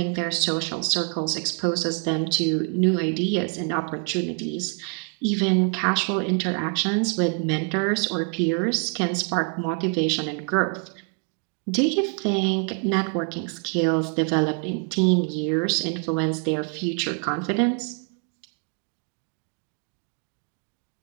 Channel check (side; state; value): left; quieter; 36.6 dB